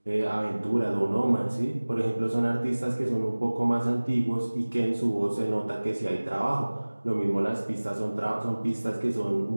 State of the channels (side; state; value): both; inverted; correlation -1.00